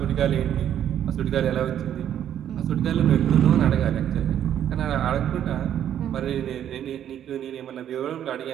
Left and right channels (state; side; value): quieter; left; 10.2 dB